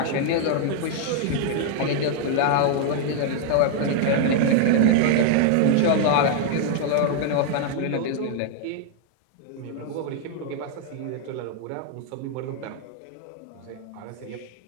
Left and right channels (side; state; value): both; different; correlation 0.00